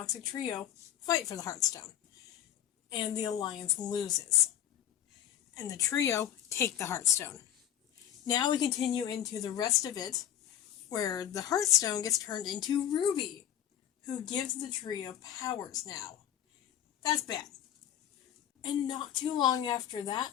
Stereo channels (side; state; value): right; quieter; 10.9 dB